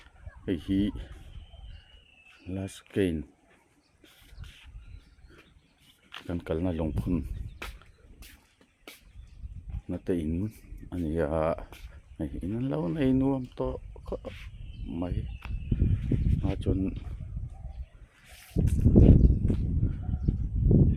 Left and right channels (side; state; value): both; identical; correlation 1.00